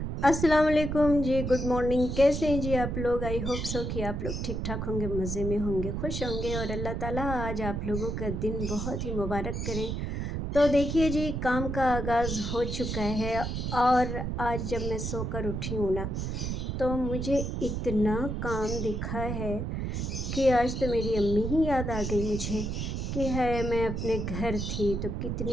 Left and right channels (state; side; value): noise; right; rumble, 3 dB below the sound